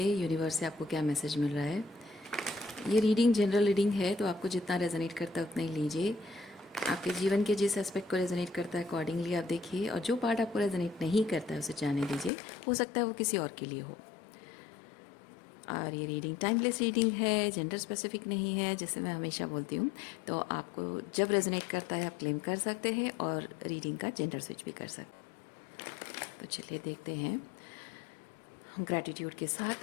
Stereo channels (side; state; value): right; drops out; at 12.3 s